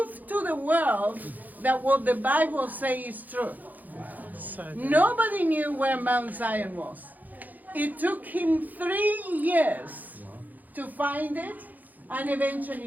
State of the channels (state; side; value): late; left; 0.082 ms